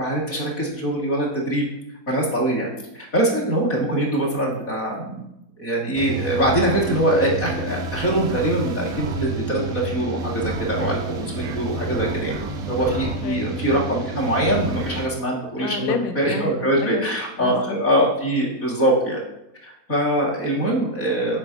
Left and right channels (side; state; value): right; late; 4.1 ms